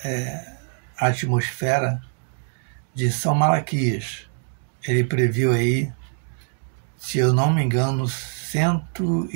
atmosfera de São Malaquias. Ele previu aí, se eu não me engano,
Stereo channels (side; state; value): left; silent; 59 dB below the other